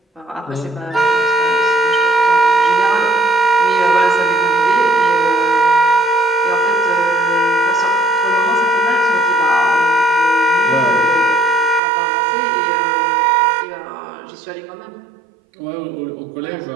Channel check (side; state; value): left; drops out; at 11.8 s